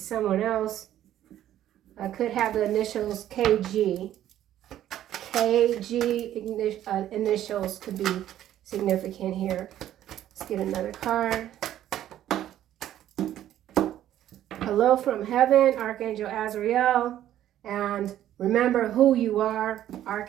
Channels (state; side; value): quieter; left; 12.1 dB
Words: someone else. Could have the initials KG. KG initials could be significant here. Let's get another card. Hello from heaven, Archangel Azrael. And remember who you are,